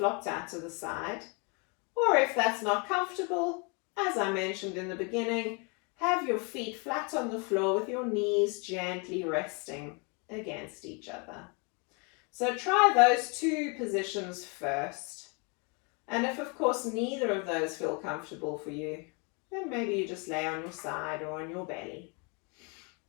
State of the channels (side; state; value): right; quieter; 33.0 dB